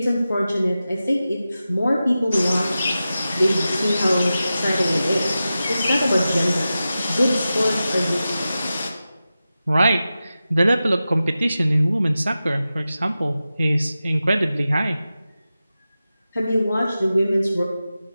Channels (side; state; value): both; inverted; correlation -0.93